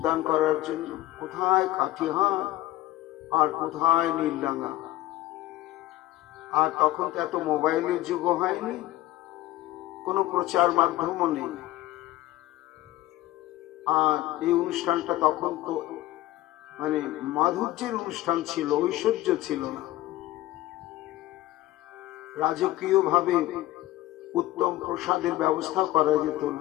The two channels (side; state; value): right; quieter; 16.0 dB